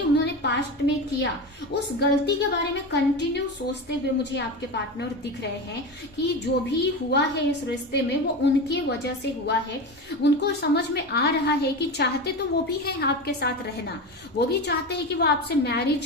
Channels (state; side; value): normal; both; correlation 0.23